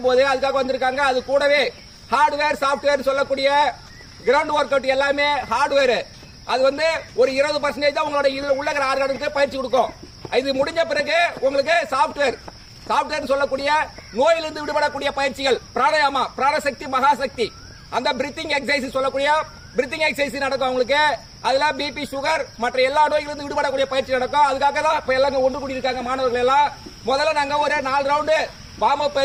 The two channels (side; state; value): both; identical; correlation 1.00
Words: போது அதுக்காக வந்திருக்காங்க. அது கூடவே ஹார்ட்வேர் சாஃப்ட்வேர் சொல்லக்கூடிய கிரவுண்ட் ஒர்க் அவுட் எல்லாமே ஹார்ட்வேர். அது வந்து ஒரு 20% தான் உங்களோட இதுல உள்ள ஆர்கானுக்கு பயிற்சி கொடுக்கும். இது முடிஞ்ச பிறகு உங்களுக்கு சாஃப்ட்வேர் சொல்லக்கூடிய நோயிலிருந்து விடுபடக்கூடிய பயிற்சிகள், பிராணாயாமா, பிராணசக்தி, மகாசக்தி, அந்த பிரீத்திங் எக்ஸசைஸ் சொல்லக்கூடிய பிரீத்திங் எக்ஸசைஸ் நடக்கும் உங்களுக்கு. அதுல பிபி, சுகர் மற்ற எல்லா நோய்களிலிருந்து விடுபடக்கூடிய பயிற்சி நடக்கும். அதுக்காக தான் இப்ப எல்லாம் ஒன்று கூடி இருக்காங்க மாணவர்கள் எல்லாம். முதல்ல நாங்க ஒரு 4 ரவுண்டு வார்ம் அப்